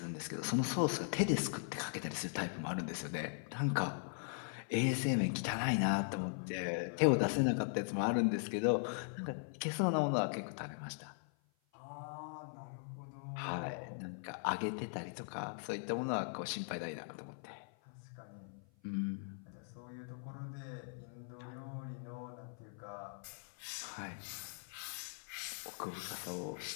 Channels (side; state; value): right; silent; 51 dB below the other